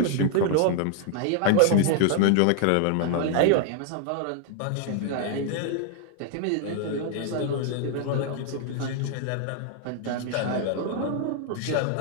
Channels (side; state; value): both; different; correlation 0.00